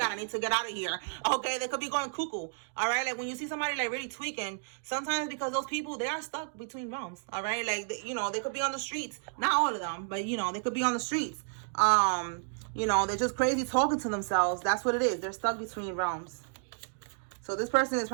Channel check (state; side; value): silent; left; digital silence